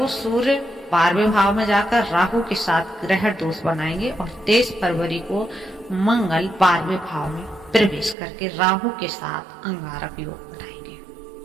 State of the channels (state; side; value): drops out; left; at 8.2 s